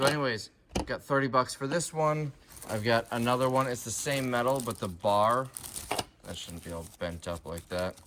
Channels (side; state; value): both; identical; correlation 1.00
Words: anyways, got 30 bucks for this one. I've got another one. It's the same metal, but the bar, that shouldn't be all bent up like that.